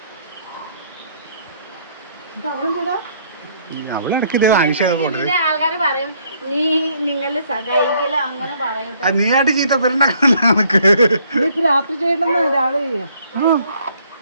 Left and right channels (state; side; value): inverted; both; correlation -0.65